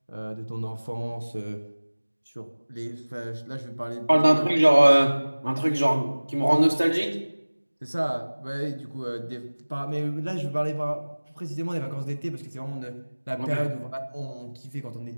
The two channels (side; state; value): both; inverted; correlation -1.00